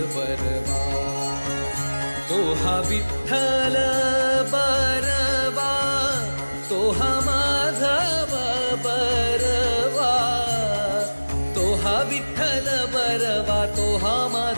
बरबा तो हा विठ्ठल बरबा तो हा माधव बरबा तो हा विठ्ठल बरबा तो हा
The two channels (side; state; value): both; inverted; correlation -1.00